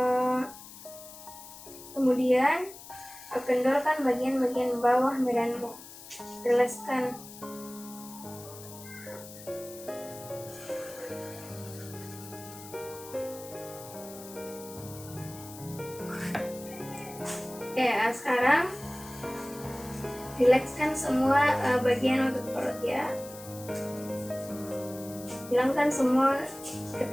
Kemudian kendorkan bagian-bagian bawah badanmu. Rilekskan. Oke, sekarang rilekskan semua bagian otot perut ya. Hilangkan semua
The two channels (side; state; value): left; noise; hiss, 16 dB below the sound